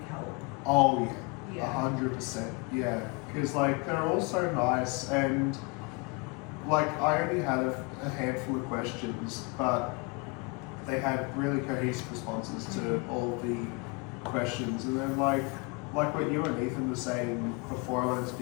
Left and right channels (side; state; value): right; quieter; 28.7 dB